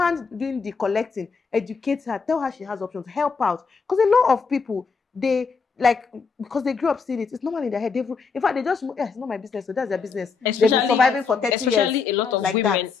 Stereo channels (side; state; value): right; quieter; 5.3 dB